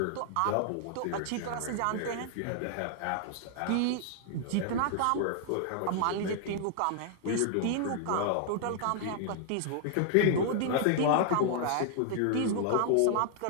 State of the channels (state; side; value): different; both; correlation -0.01